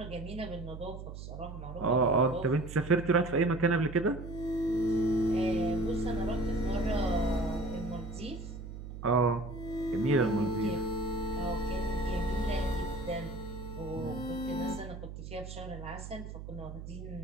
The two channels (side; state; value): right; noise; hum, 10 dB below the sound